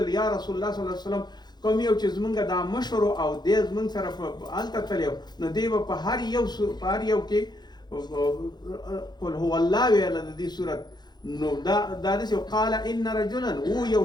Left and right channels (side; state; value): right; late; 0.21 ms